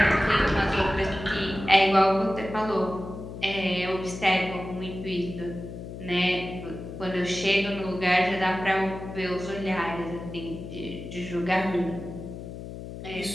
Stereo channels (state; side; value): noise; left; hum, 10 dB below the sound